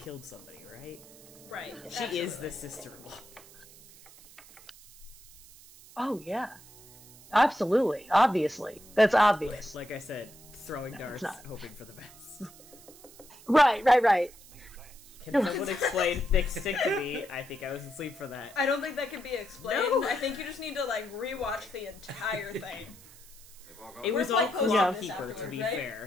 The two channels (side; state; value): right; noise; hiss, 21 dB below the sound